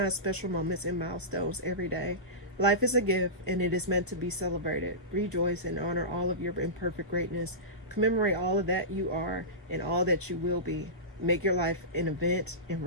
special moments and milestones every day. Life is a gift, and it is meant to be celebrated. Rejoice and honor all of your imperfect greatness. Commemorate all of that you are and all that you will be. Make your life an event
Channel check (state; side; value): normal; both; correlation -0.19